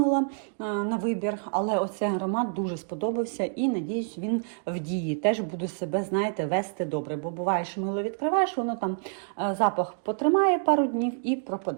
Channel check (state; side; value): silent; left; digital silence